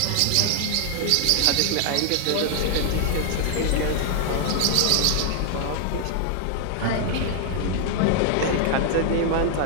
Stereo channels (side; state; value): both; different; correlation 0.00